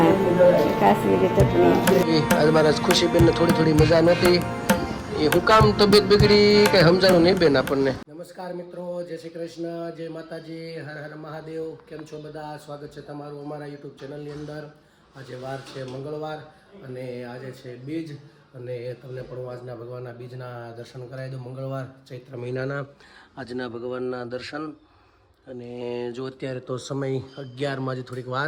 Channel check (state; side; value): identical; both; correlation 1.00